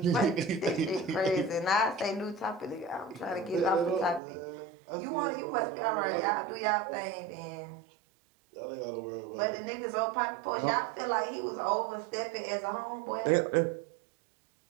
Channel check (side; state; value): left; drops out; at 4.2 s